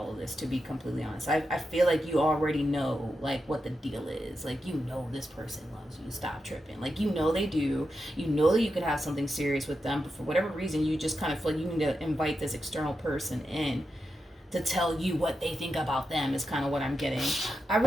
of this, to be completely honest. I feel like you already know, like, what the deal is. Like, you know this person loves you. Stop tripping. Like, you know they do. You know that you could have something serious with them, but for whatever reason, you just kind of feel like you need to invite this external person in to tell you what they think about them is kind of what I'm getting. I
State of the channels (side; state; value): both; normal; correlation 0.88